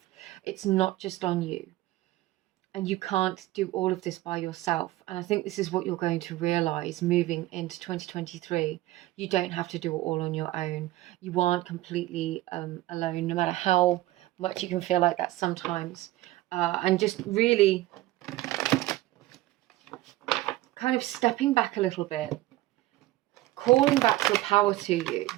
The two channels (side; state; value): left; quieter; 16.7 dB